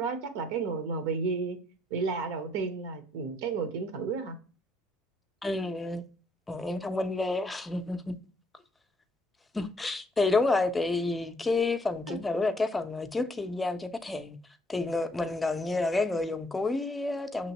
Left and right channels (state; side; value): normal; both; correlation 0.68